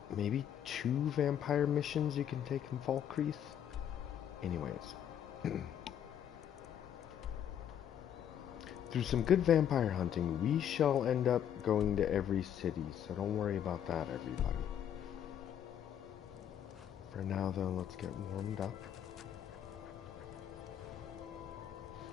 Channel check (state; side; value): quieter; right; 9.6 dB